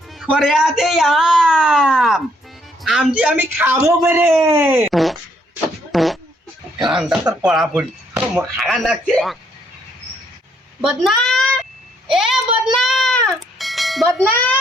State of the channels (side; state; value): both; normal; correlation 0.70